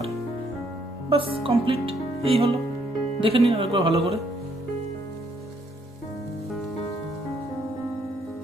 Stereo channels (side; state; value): both; normal; correlation 0.70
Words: বাস, কমপ্লিট। এই হলো, দেখে নিন একবার ভালো করে।